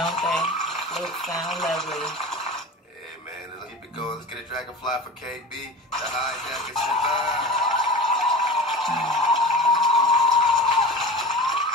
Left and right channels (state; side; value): normal; both; correlation 0.33